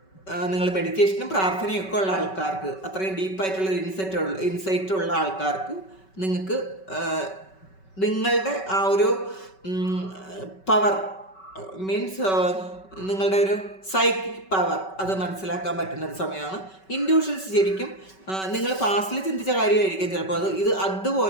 നിങ്ങൾ മെഡിറ്റേഷനും പ്രാർത്ഥനയും ഒക്കെ ഉള്ള ആൾക്കാർക്ക്, അത്രയും ഡീപ്പായിട്ടുള്ളൊരു ഇൻസൈറ്റ് ഉള്ള ആൾക്കാർക്ക് നിങ്ങൾക്ക് നിങ്ങളുടെ ആ ഒരു പവർ മീൻസ് നിങ്ങളുടെ ഒരു സൈക്കിക് പവർ അത് മനസ്സിലാക്കാൻ പറ്റുന്നൊരു സമയമാണ്. ഇൻഡ്യൂഷൻസ് ശരിക്കും നിങ്ങൾ പാസ്റ്റിൽ ചിന്തിച്ച കാര്യമായിരിക്കും ചിലപ്പോൾ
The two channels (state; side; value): late; right; 5.3 ms